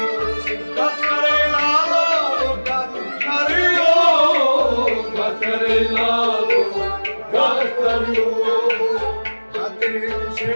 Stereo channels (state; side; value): inverted; both; correlation -1.00